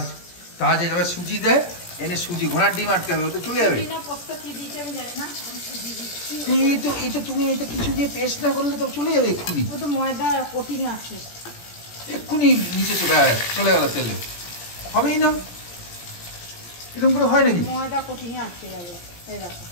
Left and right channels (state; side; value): late; right; 17 ms